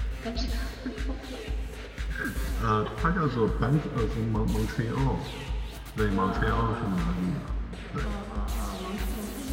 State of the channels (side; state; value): both; identical; correlation 1.00